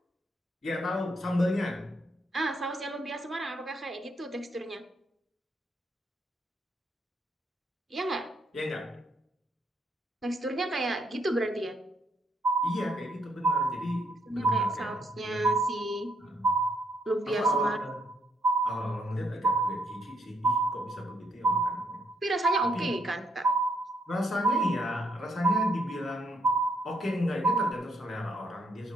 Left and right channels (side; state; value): both; normal; correlation 0.72